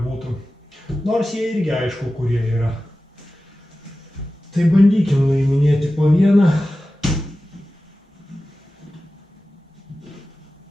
Nors jie irgi aišku, kurie yra. Tai bandykim nuiminėti po vieną.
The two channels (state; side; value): normal; both; correlation 0.95